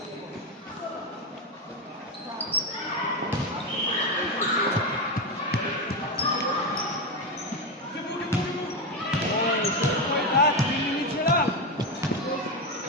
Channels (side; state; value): both; normal; correlation 0.12